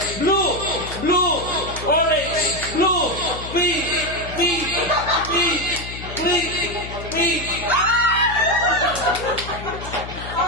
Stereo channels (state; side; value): noise; left; hum, 11 dB below the sound